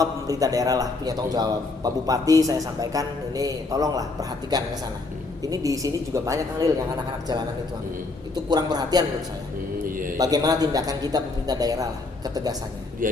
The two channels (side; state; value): right; quieter; 3.5 dB